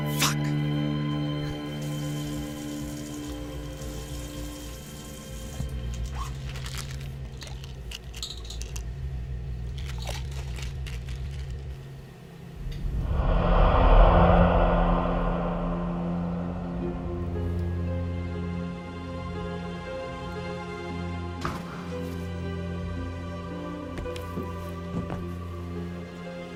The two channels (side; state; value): both; identical; correlation 1.00